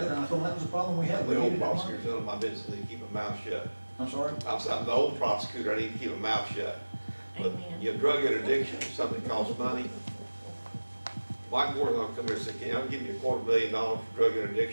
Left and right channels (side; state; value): both; inverted; correlation -1.00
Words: and I told them that was a problem we had. We The old needed that money. prosecutor's none of my business, I need to keep my mouth shut. I'm sorry? I'm the old prosecutor, I need to keep my mouth shut. But your drug interdiction is something that costs money. Mike Moore's gonna come here and say, "Can I give you $250,000 for drug